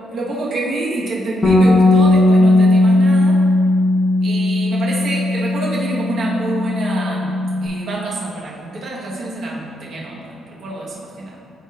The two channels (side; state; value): both; normal; correlation 0.80